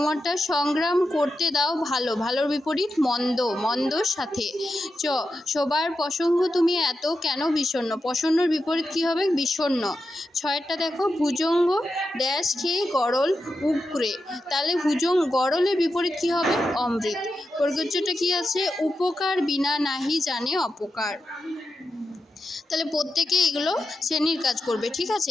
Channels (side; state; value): both; normal; correlation 0.89